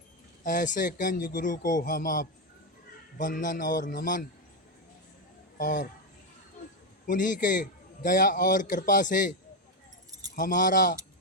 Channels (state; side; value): normal; both; correlation 0.06